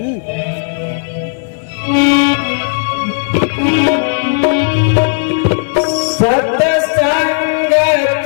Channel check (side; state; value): right; silent; digital silence